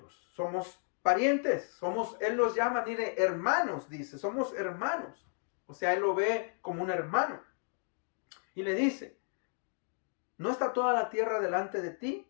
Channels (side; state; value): right; silent; 55 dB below the other